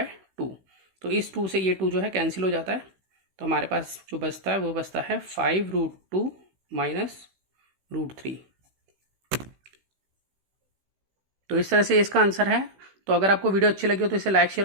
तो इस 2 से ये 2 जो है कैंसिल हो जाता है। तो हमारे पास जो बचता है वो बचता है 5√2 माइनस √3। तो इस तरह से इसका आंसर है। तो अगर आपको वीडियो अच्छी लगी हो तो इसे लाइक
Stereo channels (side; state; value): left; late; 16 ms